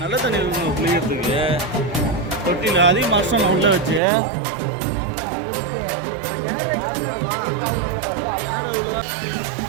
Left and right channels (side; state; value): left; drops out; at 4.0 s